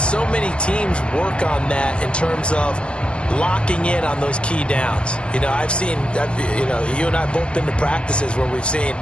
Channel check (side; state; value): right; late; 0.051 ms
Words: many teams work on that in terms of locking in on those key downs. You know, I've seen, you and I both been to practices where we've seen,